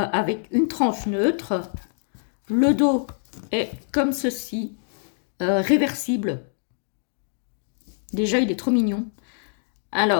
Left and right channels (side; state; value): right; silent; digital silence